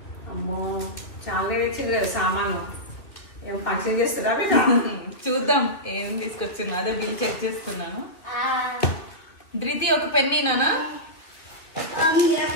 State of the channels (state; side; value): late; right; 2.9 ms